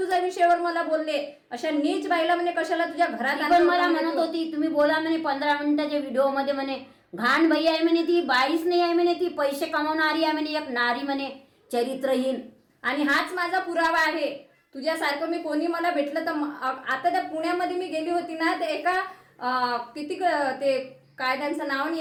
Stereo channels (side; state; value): both; identical; correlation 1.00